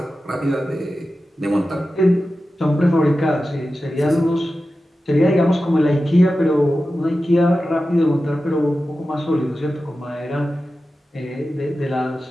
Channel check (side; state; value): both; normal; correlation 0.93